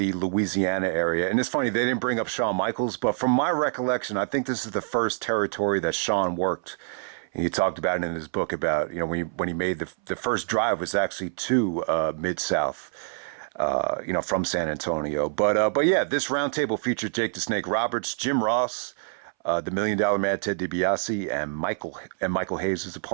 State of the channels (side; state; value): left; silent; 61 dB below the other